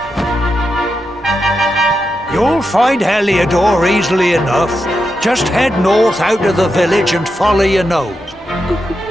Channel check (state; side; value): normal; both; correlation 0.87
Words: You'll find Heliodor easily enough. Just head north out of the village and follow your nose.